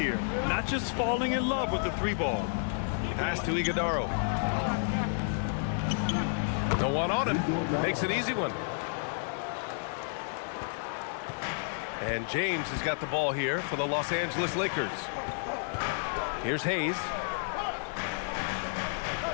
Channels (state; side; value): silent; right; 57 dB below the other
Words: Not just falling in love with the three ball. Pass to Iguodaro. No one on him. Makes an easy one. And James has got the ball here for the Los Angeles Lakers. Here's Hayes.